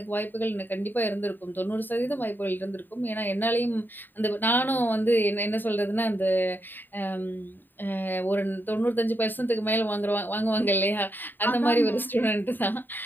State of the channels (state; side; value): late; right; 0.091 ms